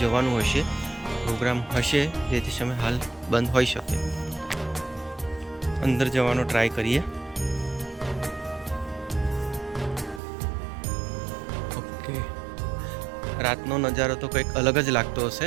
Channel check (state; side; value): drops out; left; at 10.2 s